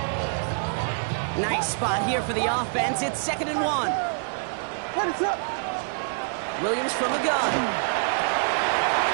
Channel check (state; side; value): silent; left; 61 dB below the other